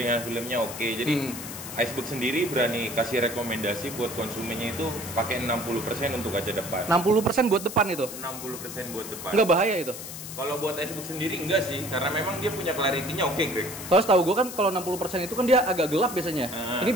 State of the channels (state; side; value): noise; left; hiss, 10 dB below the sound